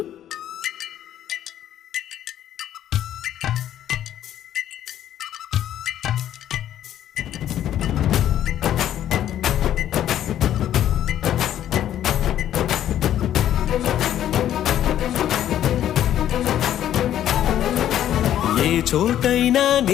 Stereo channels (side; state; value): right; quieter; 11.3 dB